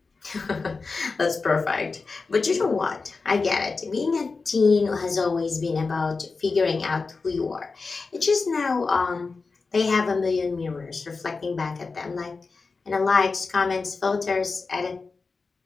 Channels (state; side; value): quieter; right; 4.3 dB